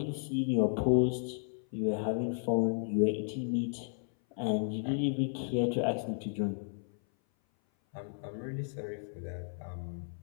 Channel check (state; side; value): silent; right; 55 dB below the other